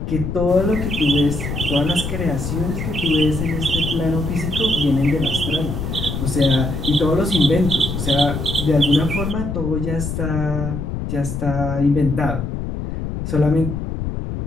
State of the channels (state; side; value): noise; left; rumble, 4 dB below the sound